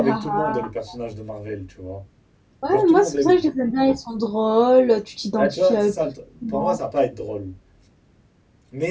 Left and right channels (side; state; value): both; identical; correlation 1.00